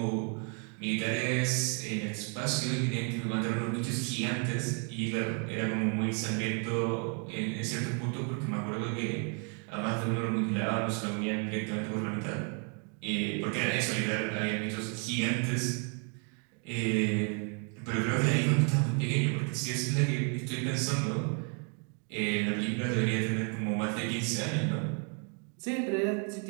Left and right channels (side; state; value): left; quieter; 39.5 dB